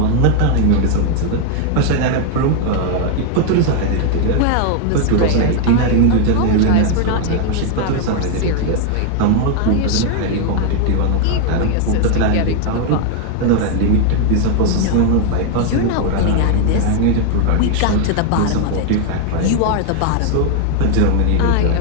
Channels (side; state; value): both; different; correlation 0.00